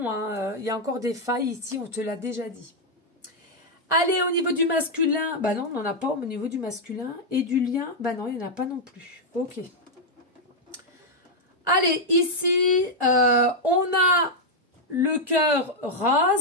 Hein. Il y a encore des failles ici, on te l'a déjà dit. Allez, au niveau du masculin, bah non, on n'en a pas au niveau du masculin. Et du lien, bah non, il n'y en a pas non plus. Ok. Allez, ici, on a le cœur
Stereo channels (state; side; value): normal; both; correlation -0.02